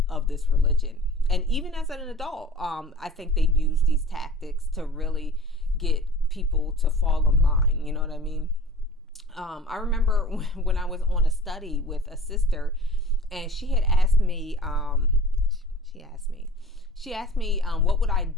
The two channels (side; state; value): both; normal; correlation 0.43